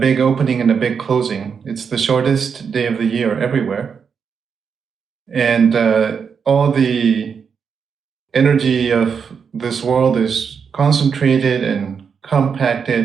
opening and a big closing. It's the shortest day of the year everywhere. And all the energy of this world is concentrated and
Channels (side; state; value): left; quieter; 6.4 dB